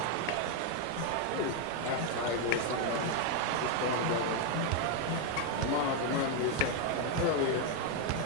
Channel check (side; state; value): both; different; correlation 0.01